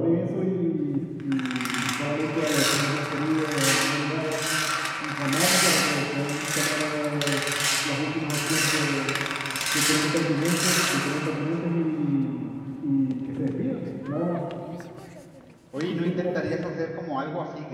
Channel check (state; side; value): identical; both; correlation 1.00